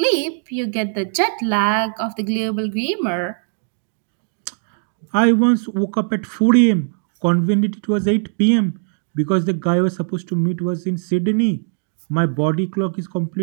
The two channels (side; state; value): left; silent; digital silence